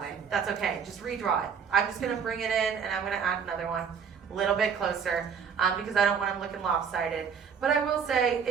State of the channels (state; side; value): quieter; left; 6.7 dB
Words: way. That's okay, just redraw it. I'm just gonna bring it in and I'm gonna add another one a little bit closer because I don't want them looking lopsided. But I will say